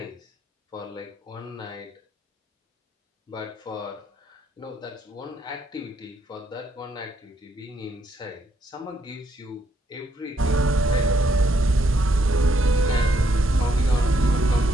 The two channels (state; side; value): normal; both; correlation 0.74